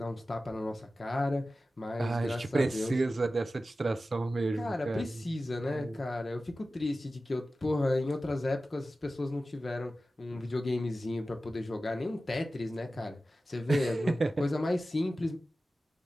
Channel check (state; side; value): normal; both; correlation 0.94